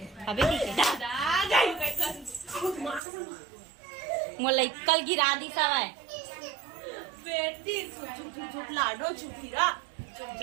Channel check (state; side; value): drops out; left; at 3.0 s